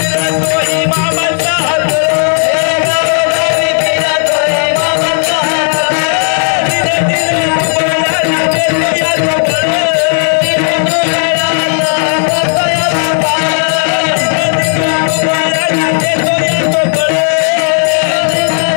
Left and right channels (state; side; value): silent; right; 70 dB below the other